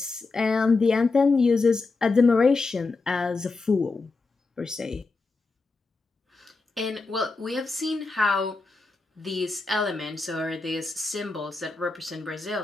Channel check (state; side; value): quieter; right; 3.8 dB